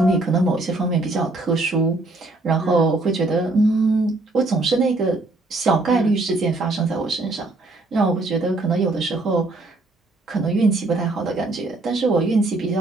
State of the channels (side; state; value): left; quieter; 3.0 dB